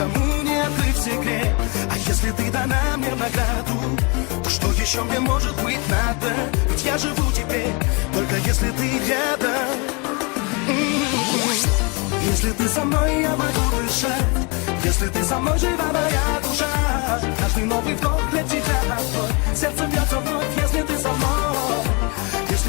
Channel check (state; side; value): quieter; right; 30.8 dB